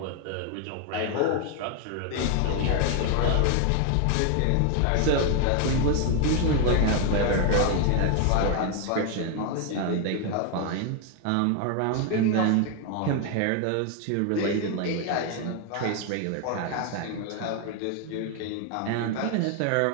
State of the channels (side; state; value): both; different; correlation 0.01